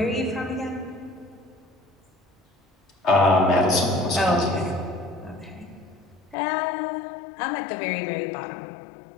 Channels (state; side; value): drops out; right; at 6.4 s